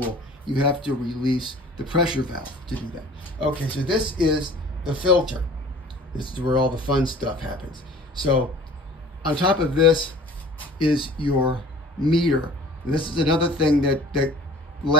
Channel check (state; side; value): normal; both; correlation 0.47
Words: You have to release the pressure valve to do that. Okay, so this is the filter. This is where all the fun stuff happens. So on top of this is your meter. And this is another thing that